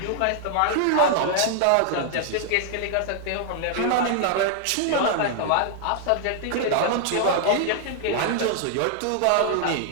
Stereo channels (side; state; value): both; different; correlation 0.00